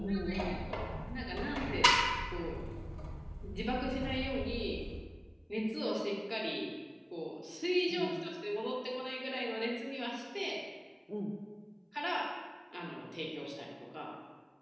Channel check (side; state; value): both; identical; correlation 1.00